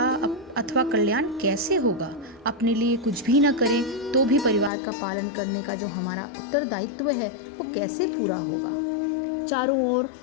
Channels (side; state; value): right; drops out; at 4.7 s